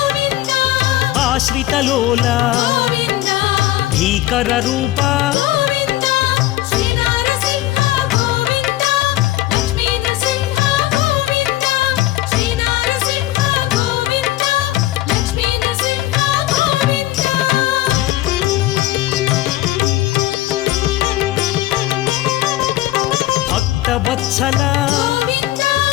ఆశ్రితలోల భీకర రూప భక్తవత్సల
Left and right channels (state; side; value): quieter; right; 15.7 dB